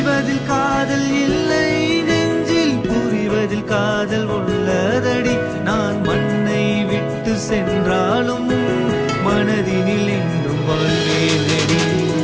சொல்வதில் காதல் இல்லை, நெஞ்சில் புரிவதில் காதல் உள்ளதடி. நான் மண்ணை விட்டு சென்றாலும் மனதினில் என்றும் வாழ்வேனடி.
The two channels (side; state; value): both; identical; correlation 1.00